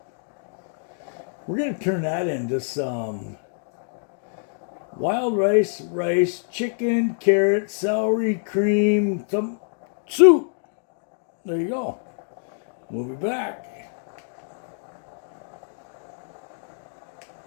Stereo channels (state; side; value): silent; right; 61 dB below the other